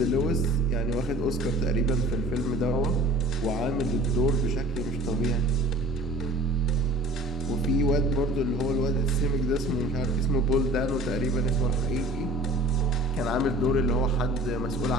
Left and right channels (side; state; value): both; normal; correlation 0.47